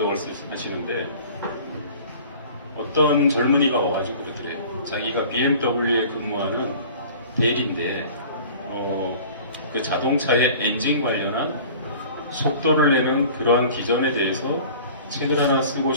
하시는데 어떤 젊은이가 와가지고 그러더래요. 자기가 BMW에 근무하는 대리인데 그 자동차의 엔진 관련한 속도를 내는 그러한 기전에 대해서 책을 하나 쓰고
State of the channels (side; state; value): both; inverted; correlation -0.45